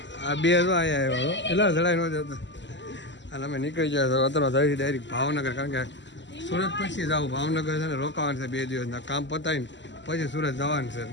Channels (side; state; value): right; late; 0.53 ms